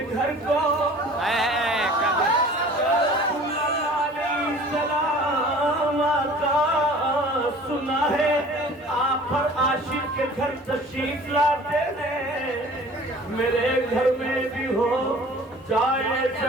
گھر کو سلام آقا سنا ہے آپ پر عاشق کے گھر تشریف لاتے ہیں میرے گھر میں بھی ہو جائے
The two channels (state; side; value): normal; both; correlation 0.46